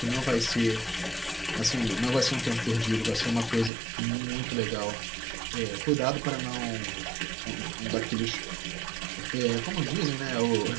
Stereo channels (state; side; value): drops out; left; at 3.7 s